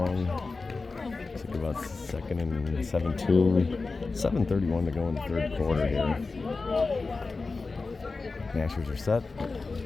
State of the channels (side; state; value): right; quieter; 3.9 dB